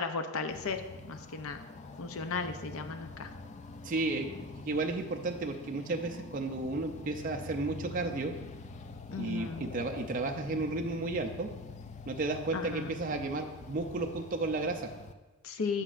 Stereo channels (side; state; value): both; normal; correlation 0.28